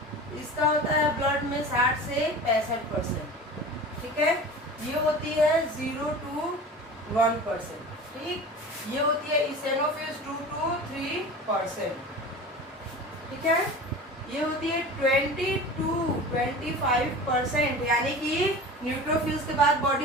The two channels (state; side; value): normal; both; correlation 0.35